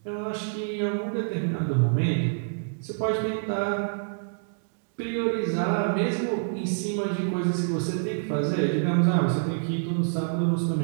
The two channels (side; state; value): left; silent; digital silence